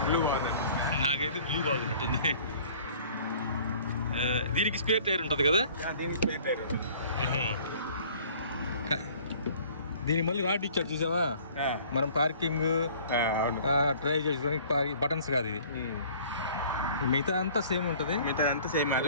నాకైతే బ్లూ బాగున్నట్టుంది. దీనికి స్పేర్ టైర్ ఉంటుంది కదా. దీనికి మళ్ళీ రాడ్ ఇచ్చాడు చూసావా. మనం పార్కింగ్ డ్రైవ్ చేసుకోవడానికి బటన్స్ కాదు ఇది. మిగతా అంతా సేమ్ ఉంటుంది. మిగతా అంతా సేమ్,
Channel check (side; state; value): both; inverted; correlation -0.51